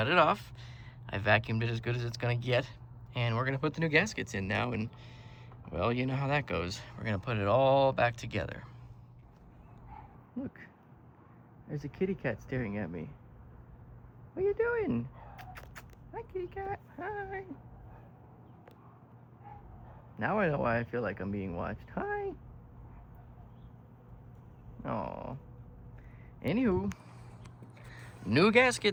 it off. I vacuumed it as good as it's gonna get, and we're gonna put the new gaskets in now, and well, you know how that goes. We're gonna put it all back together. Look, there's a kitty cat staring at me. What are you doing? Hi, kitty cat. Hi. Now I know why I feel like I'm being watched. Hi. Aw. Anywho, new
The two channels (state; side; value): identical; both; correlation 1.00